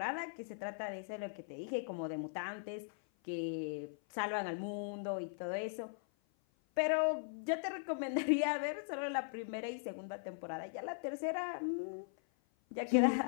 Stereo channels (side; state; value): right; silent; 52 dB below the other